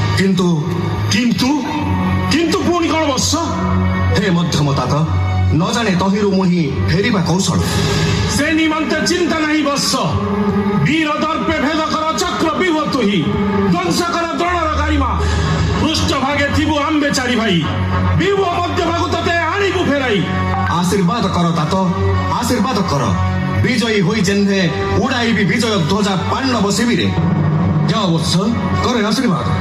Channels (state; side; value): identical; both; correlation 1.00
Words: କିନ୍ତୁ କିନ୍ତୁ ପୁଣି କଣ ବତ୍ସ? ହେ ମଧ୍ୟମ तात, ନ ଜାଣେ ତହିଁରୁ ମୁହିଁ ଫେରିବା କୌଶଳ। ସେ ନିମନ୍ତେ ଚିନ୍ତା ନାହିଁ ବତ୍ସ। ବୀର ଦର୍ପେ ଭେଦ କର ଚକ୍ରବ୍ୟୁହ ତୁହି, ଧ୍ୱଂସ କର ଦ୍ରୋଣର ଗାରିମା। ପୃଷ୍ଠ ଭାଗେ ଥିବୁ ଆମ୍ବେ ଚାରି ଭାଇ, ବିଭୁ ମଧ୍ୟ ଭାଗୁ ତତେ ଆଣିବୁ ଫେରାଇ। ଆଶୀର୍ବାଦ କର तात, ଆଶୀର୍ବାଦ କର। ବିଜୟୀ ହୋଇ ଯେହ୍ନେ ଉଡ଼ାଇବି ବିଜୟ ଧ୍ୱଜା ପାଣ୍ଡବ ଶିବିରେ। ଯାଅ ବତ୍ସ, କରେ ଆଶୀର୍ବାଦ।